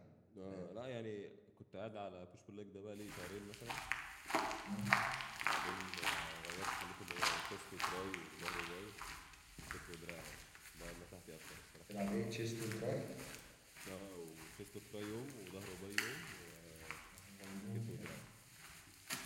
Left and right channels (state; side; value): identical; both; correlation 1.00